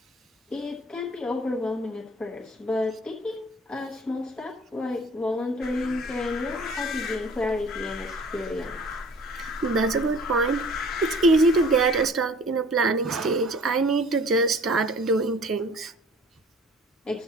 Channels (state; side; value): normal; both; correlation 0.49